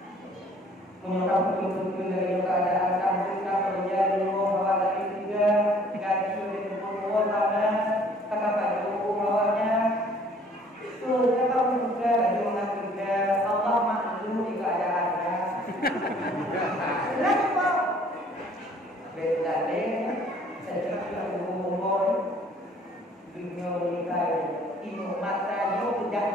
menyokap betul-betul dari keadaan kamu kerja dulu bahwa tadi juga gaji di tempat sana kakak baju bawahnya tuh kamu juga lagi juga Allah maklum di keadaannya. Lagi pak beda deh saya juga ngomong dunia nikah ino mata yo dak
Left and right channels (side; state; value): both; normal; correlation 0.56